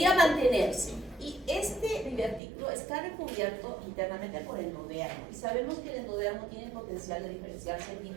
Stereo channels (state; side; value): drops out; left; at 2.4 s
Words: mantenerse. Y este divertículo está recubierto internamente por el endodermo. Y sabemos que el endodermo tiene el potencial de diferenciarse en